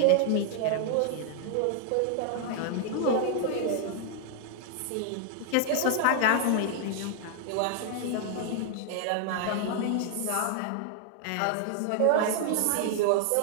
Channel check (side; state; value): both; different; correlation 0.00